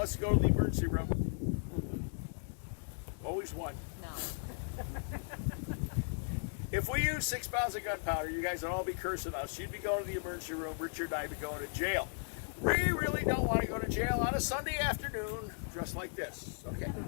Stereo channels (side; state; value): right; silent; digital silence